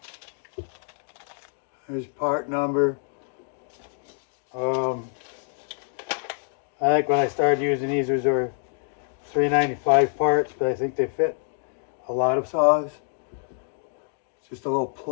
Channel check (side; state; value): right; silent; 60 dB below the other